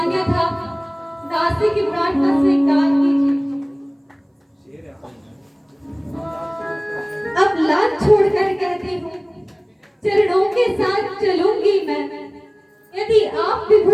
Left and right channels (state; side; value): identical; both; correlation 1.00